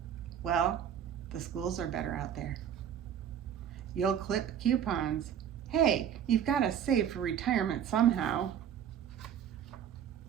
Well, the schools are better out there. You'll clip coupons. Hey, you've got to save for retirement somehow.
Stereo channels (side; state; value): left; quieter; 9.1 dB